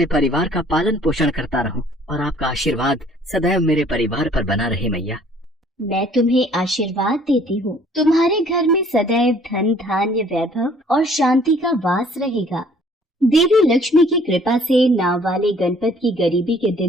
परिवार का पालन पोषण करता रहूं, और आपका आशीर्वाद सदैव मेरे परिवार पर बना रहे मैया। मैं तुम्हें आशीर्वाद देती हूँ, तुम्हारे घर में सदैव धन धान्य वैभव और शांति का वास रहेगा। देवी लक्ष्मी की कृपा से नाव वाले गणपत की गरीबी के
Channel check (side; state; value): both; normal; correlation 0.57